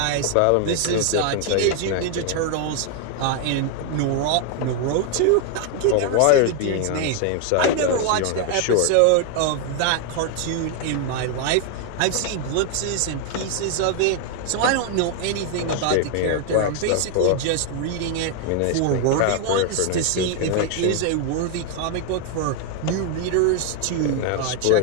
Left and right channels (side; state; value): both; different; correlation 0.00